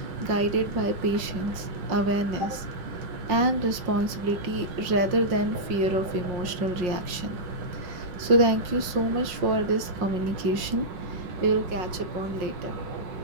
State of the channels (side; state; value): left; late; 5.6 ms